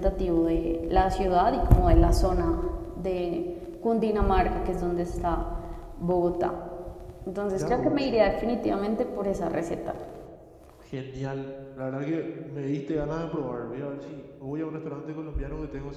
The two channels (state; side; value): identical; both; correlation 1.00